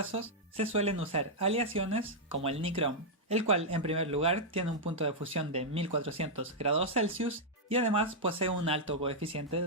se suelen usar aleaciones como el nicrom, el cual en primer lugar tiene un punto de fusión de 1400 grados Celsius y además posee un alto coeficiente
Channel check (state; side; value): normal; both; correlation -0.05